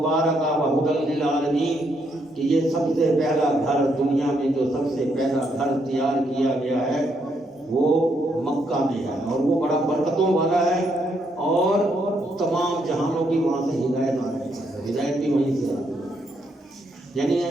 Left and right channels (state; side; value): normal; both; correlation 0.75